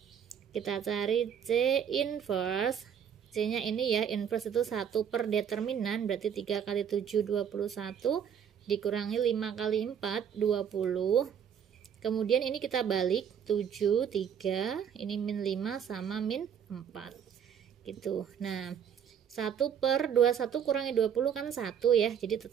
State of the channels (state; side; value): quieter; left; 8.2 dB